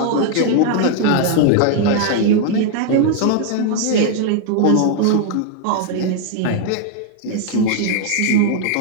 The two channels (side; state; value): both; different; correlation 0.00